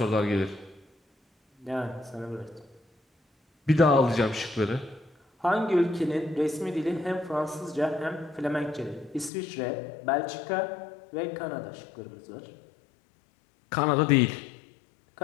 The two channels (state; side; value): drops out; right; at 9.3 s